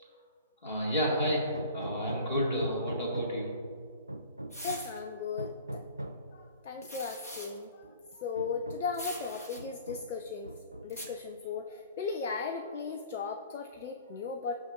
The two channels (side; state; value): both; inverted; correlation -0.46